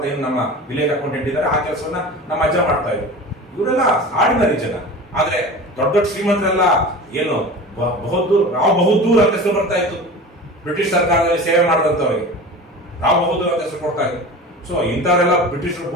ಏನು ನಮ್ಮ ವಿಲೇಜ್ ಅಕೌಂಟೆಂಟ್ ಇದ್ದಾರೆ, ಆ ಕೆಲಸವನ್ನ ನಮ್ಮ ಅಜ್ಜ ಮಾಡ್ತಾ ಇದ್ರು. ಇವರೆಲ್ಲ ಆರ್ಡಿನರಿ ಜನ. ಆದ್ರೆ ದೊಡ್ಡ ದೊಡ್ಡ ಶ್ರೀಮಂತರೆಲ್ಲ ಏನು ರಾವ್ ಬಹದ್ದೂರ್ ಅಂತ ಹೆಸರು ಬರ್ತಾ ಇತ್ತು. ಬ್ರಿಟಿಷ್ ಸರ್ಕಾರದಲ್ಲಿ ಸೇವೆ ಮಾಡಿದಂಥವ್ರಿಗೆ ರಾವ್ ಬಹದ್ದೂರ್ ಅಂತ ಹೆಸರು ಕೊಡ್ತಾ ಇತ್ತು. ಸೊ ಇಂಥವರೆಲ್ಲ ಬ್ರಿಟಿಷರು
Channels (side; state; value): both; normal; correlation 0.35